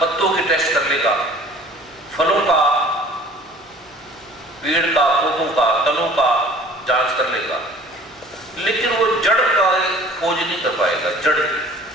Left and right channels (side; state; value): both; normal; correlation 0.49